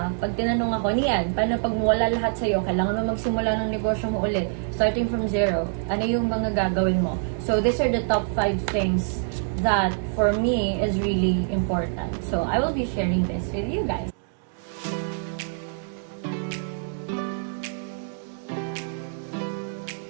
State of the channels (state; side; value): silent; left; digital silence